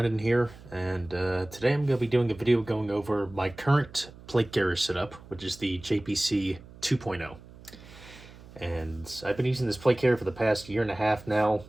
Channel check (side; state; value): right; noise; hum, 20 dB below the sound